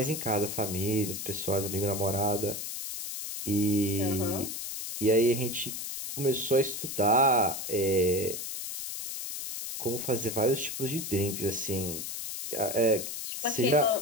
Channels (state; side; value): noise; left; hiss, 6 dB below the sound